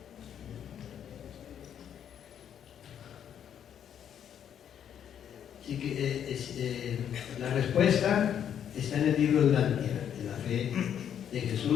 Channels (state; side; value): quieter; right; 9.2 dB